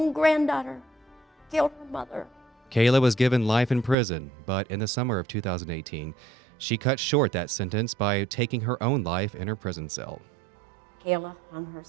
granddaughter killed her mother. Kayla was given life in prison, but in the summer of 2018, she cut short that sentence by taking her own life in her prison cell. Kayla hung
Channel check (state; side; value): drops out; left; at 4.0 s